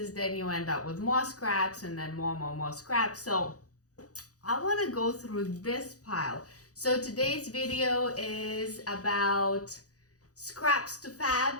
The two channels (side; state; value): right; late; 0.67 ms